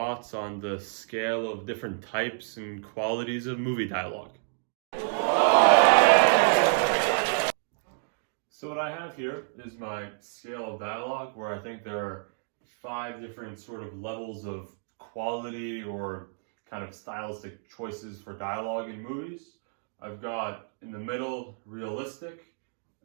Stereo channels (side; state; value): left; silent; digital silence